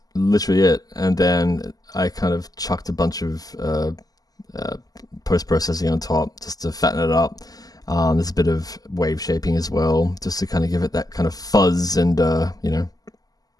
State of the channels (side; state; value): right; late; 0.18 ms